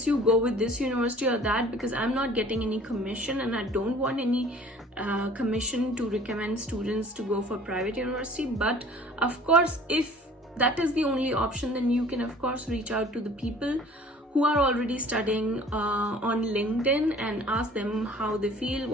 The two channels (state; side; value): normal; both; correlation 0.49